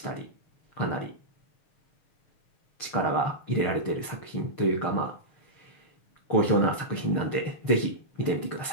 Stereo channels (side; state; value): right; late; 6.6 ms